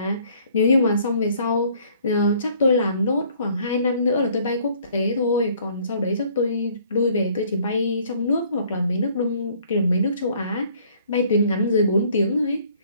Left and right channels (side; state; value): both; inverted; correlation -0.59